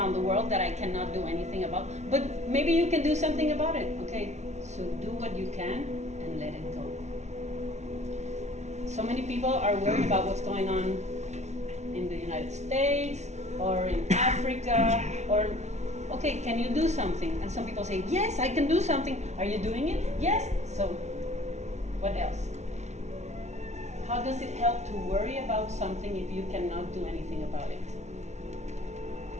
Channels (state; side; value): late; left; 0.32 ms